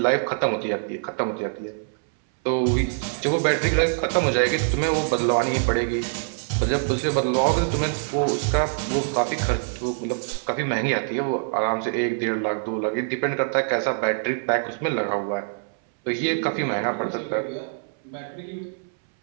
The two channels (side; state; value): left; silent; 62 dB below the other